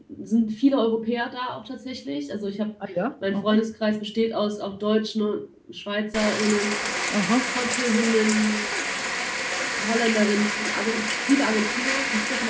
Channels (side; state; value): both; identical; correlation 1.00